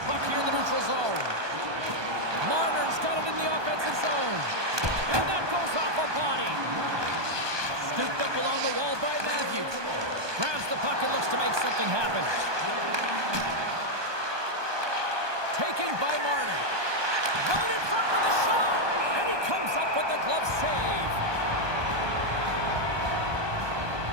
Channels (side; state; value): left; late; 1.2 ms